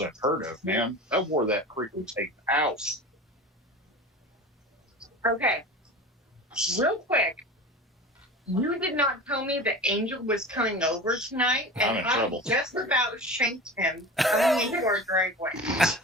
of, man. I wore that freaking tape out. Okay. Real quick. You did not tell me that Angel was coming over tonight, I'm and in I trouble. just about shanked him coming into our driveway.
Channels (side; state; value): both; normal; correlation 0.33